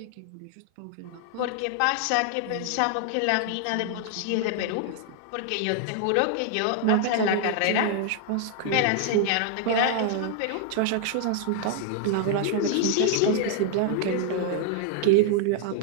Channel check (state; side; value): different; both; correlation 0.00